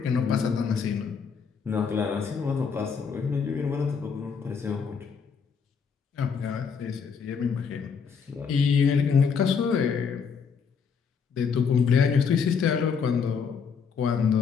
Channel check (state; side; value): quieter; right; 6.2 dB